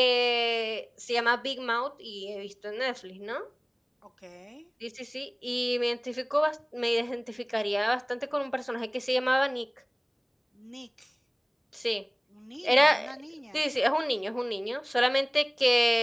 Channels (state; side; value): identical; both; correlation 1.00